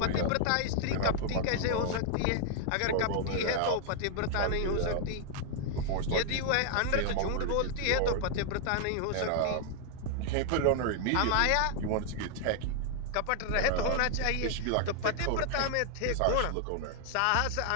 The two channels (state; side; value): different; both; correlation 0.00